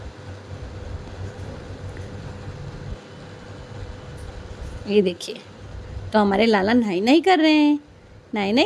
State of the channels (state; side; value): identical; both; correlation 1.00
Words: ये देखिए, तो हमारे लाला नहाई नहीं कर रहे हैं, नहाई